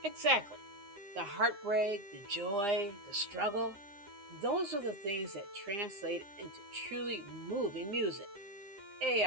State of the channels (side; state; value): left; late; 9.8 ms